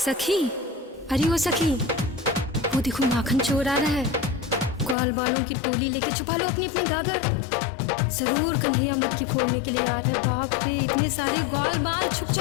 सखी, अरे ओ सखी, वो देखो माखन चोर आ रहा है। ग्वाल बालों की टोली लेके छुपा लो अपनी अपनी गागर। जरूर कन्हैया मटकी फोड़ने के लिए आ रहा है। बाप रे, इतने सारे ग्वाल बाल, छुप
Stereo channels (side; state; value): right; drops out; at 5.0 s